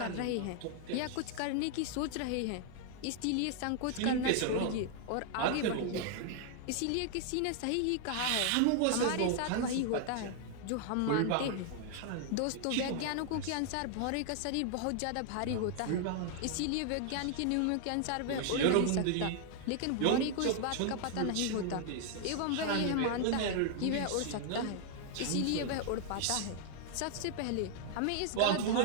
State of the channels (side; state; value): both; different; correlation 0.00